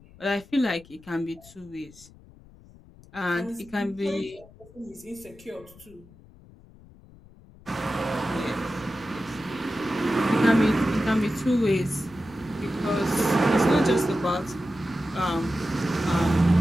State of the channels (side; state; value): left; noise; rumble, 23 dB below the sound